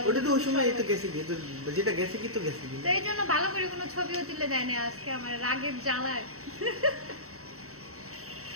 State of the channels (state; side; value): late; left; 0.64 ms